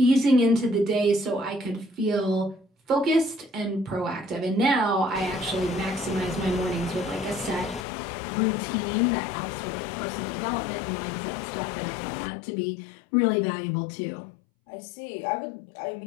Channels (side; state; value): right; drops out; at 7.9 s